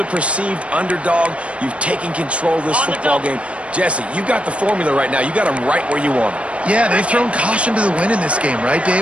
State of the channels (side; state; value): left; late; 0.061 ms